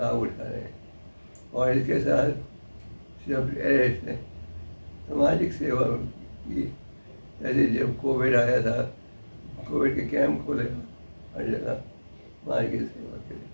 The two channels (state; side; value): inverted; both; correlation -1.00